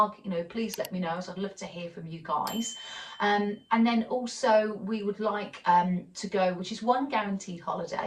you know, please let me know. So I'd love to hear from you guys. And then also we would like to go, which is one guaranteed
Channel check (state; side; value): identical; both; correlation 1.00